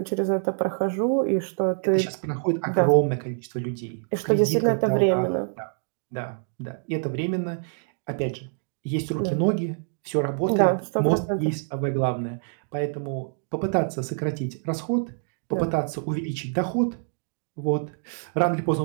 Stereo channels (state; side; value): silent; left; 60 dB below the other